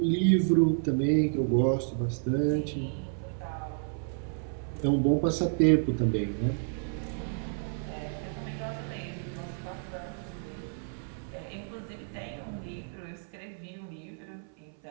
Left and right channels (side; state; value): left; silent; 57 dB below the other